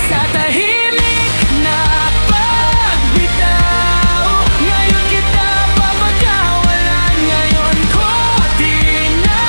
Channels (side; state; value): both; inverted; correlation -1.00